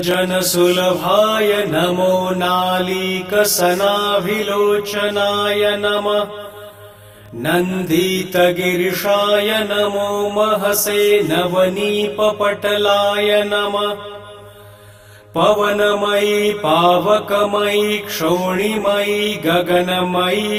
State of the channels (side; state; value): both; identical; correlation 1.00